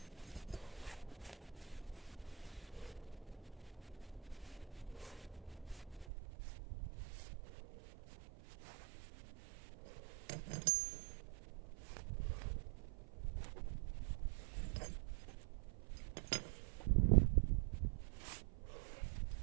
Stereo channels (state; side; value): drops out; left; at 6.1 s